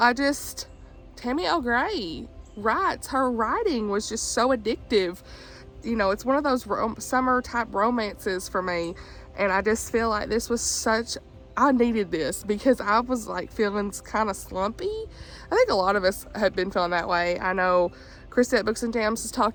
Tammy L. Gray writes. Her writing was just so addictive. You know, it's one of those summer type romances for me, and I just feel like this was I needed this because I was like feeling kind of slumpy. I think a lot of us have been feeling that way. I know Krista at Books and Jams has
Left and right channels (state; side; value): identical; both; correlation 1.00